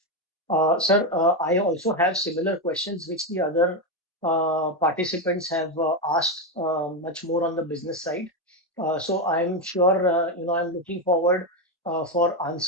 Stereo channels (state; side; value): normal; both; correlation 0.09